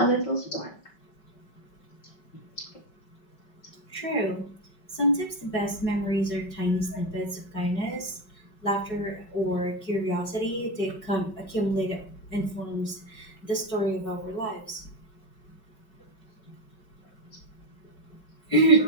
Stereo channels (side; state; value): right; late; 5.3 ms